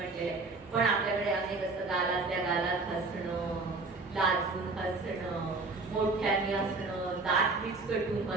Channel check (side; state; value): left; quieter; 3.7 dB